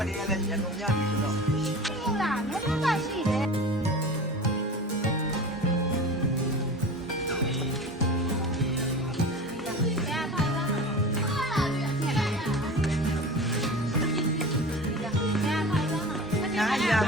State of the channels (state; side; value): normal; both; correlation 0.34